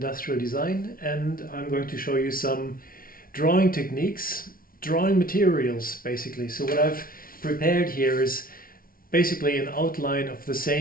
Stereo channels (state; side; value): late; right; 0.42 ms